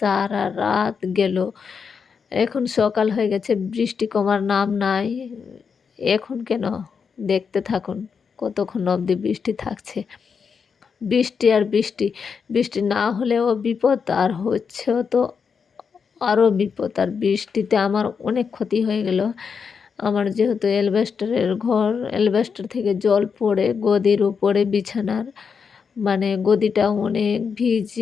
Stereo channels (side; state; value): right; quieter; 6.0 dB